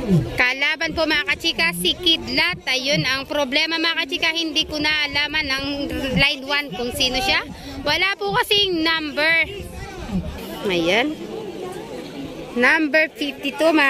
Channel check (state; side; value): identical; both; correlation 1.00